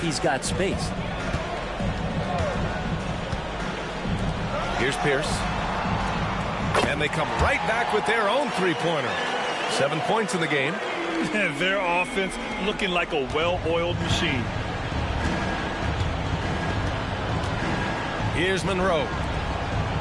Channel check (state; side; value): identical; both; correlation 1.00